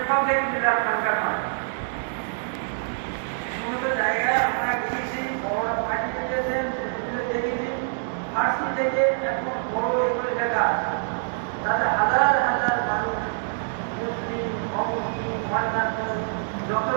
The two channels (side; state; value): left; silent; digital silence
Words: সব বিরাট সরকার নয়। সমস্ত জায়গায় আমরা গিয়েছি, বড় পার্টি পেয়েছেন, দেখেছি, ফার্সি থেকে এখন বড় এগুলো দেখা আছে। তাতে হাজার হাজার মানুষ, মুসলিম, অমুসলিম, অন্যান্য যত